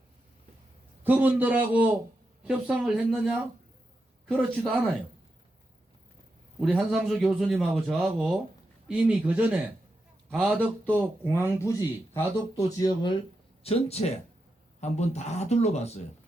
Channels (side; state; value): both; normal; correlation 0.87